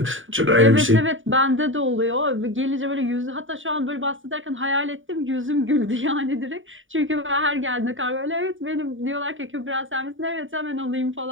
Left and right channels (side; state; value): left; late; 0.57 ms